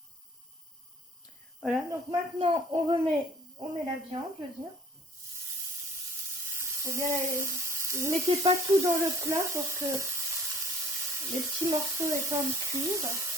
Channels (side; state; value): both; normal; correlation 0.55